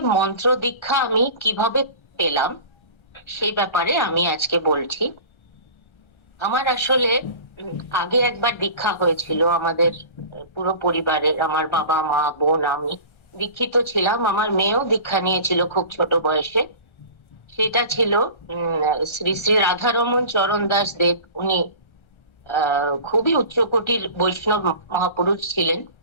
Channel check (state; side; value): late; right; 1.3 ms